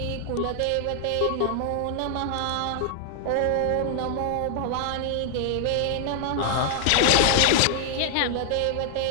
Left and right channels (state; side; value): different; both; correlation 0.00